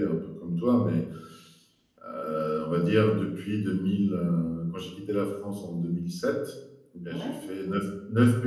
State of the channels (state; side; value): identical; both; correlation 1.00